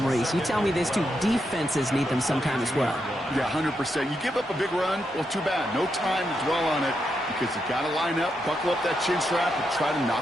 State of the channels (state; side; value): normal; both; correlation 0.83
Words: You tell me these two defenses need them sometime as well. Yeah, 100%. You give up a big run, well, too bad. No time to dwell on it because you got to line up, buckle up that chin strap, and try to